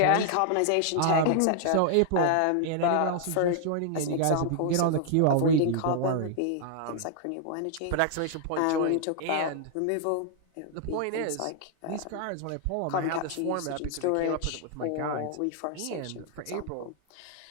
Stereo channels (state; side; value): different; both; correlation -0.01